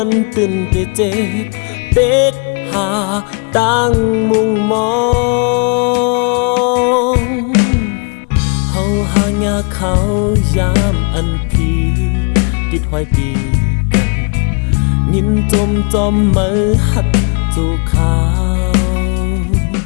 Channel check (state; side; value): quieter; right; 37.6 dB